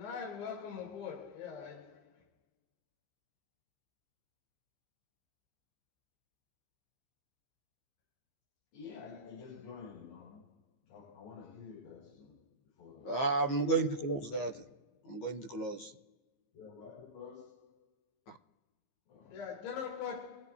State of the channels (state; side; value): late; right; 15 ms